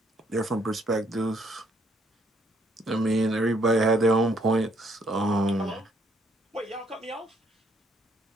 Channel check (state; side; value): normal; both; correlation 0.69